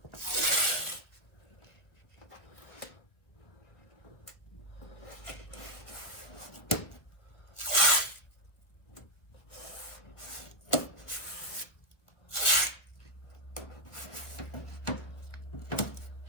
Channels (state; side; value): late; right; 1.2 ms